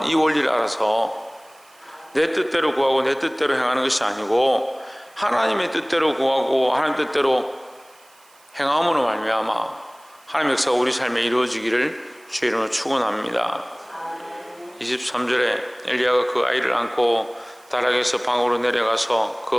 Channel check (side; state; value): right; noise; hiss, 29 dB below the sound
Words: 이 원리를 알아서 내 뜻대로 구하고 내 뜻대로 행하는 것이 아니고 하나님의 뜻대로 구하고 하나님 뜻대로 행함으로 말미암아 하나님 역사가 우리 삶에 이루어지기를 주의 이름으로 축원합니다. 23절에 엘리야가 그 아이를 안고 다락에서 방으로 내려가서